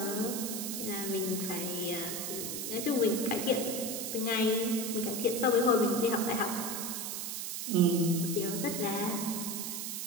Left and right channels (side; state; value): right; noise; hiss, 4 dB below the sound